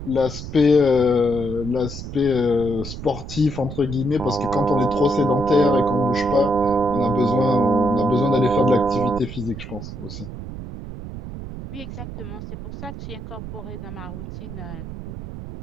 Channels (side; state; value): right; noise; rumble, 10 dB below the sound